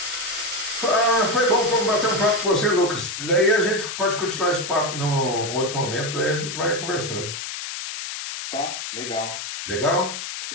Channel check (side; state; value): left; noise; hiss, 7 dB below the sound